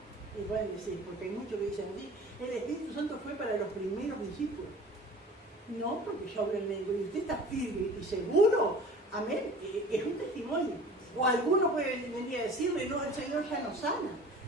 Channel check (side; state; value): both; normal; correlation 0.43